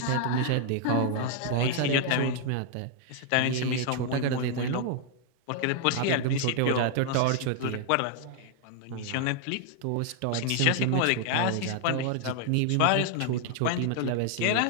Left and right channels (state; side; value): different; both; correlation 0.00